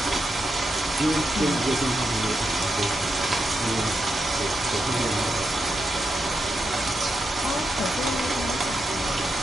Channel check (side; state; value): both; normal; correlation 0.85